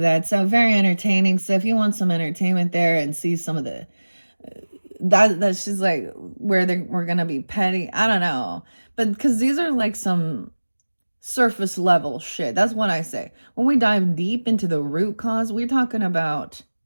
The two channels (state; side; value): inverted; both; correlation -1.00